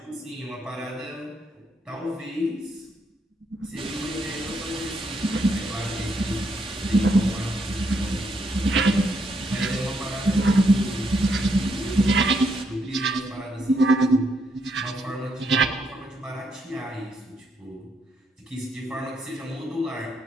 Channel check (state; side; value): normal; both; correlation 0.76